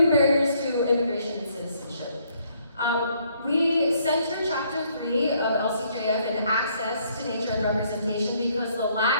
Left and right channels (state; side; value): inverted; both; correlation -0.68